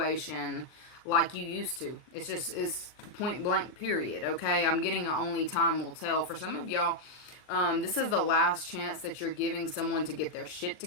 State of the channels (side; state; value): right; late; 39 ms